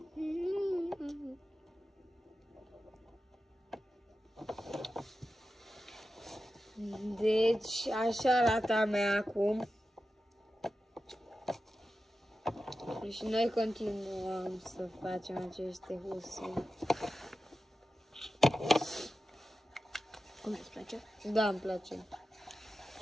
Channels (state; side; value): normal; both; correlation 0.92